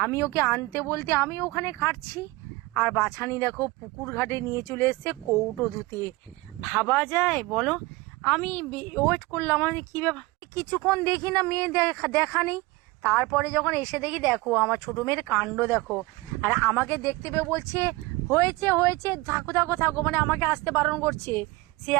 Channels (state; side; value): quieter; left; 21.9 dB